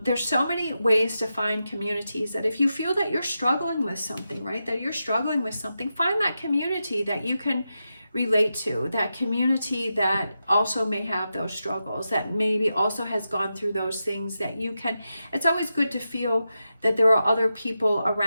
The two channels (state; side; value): inverted; both; correlation -0.89